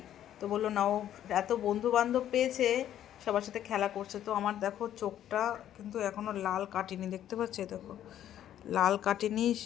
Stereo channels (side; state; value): right; quieter; 11.2 dB